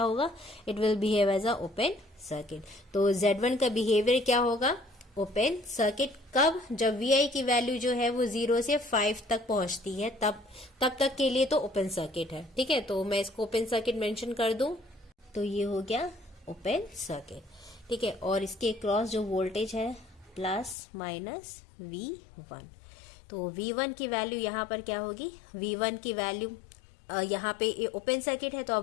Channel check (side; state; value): right; drops out; at 20.8 s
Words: it will behave as a open circuit. तो Z1 का बिहेवियर क्या होगा, ओपन सर्किट। कब, जब VI की वैल्यू जो है वो 0 से 5 तक पहुंचती है, तब तक के लिए तो ओपन सर्किट है। ठीक है, तो मैं इसको ओपन सर्किट मेंशन कर दूं तो ये हो गया ओपन सर्किट। ठीक है, और इसके क्रॉस जो वोल्टेज है प्लस माइनस V1, तो V1 की वैल्यू यहाँ पर क्या होगी, V1 की वैल्यू यहाँ पे ये ओपन सर्किट है तो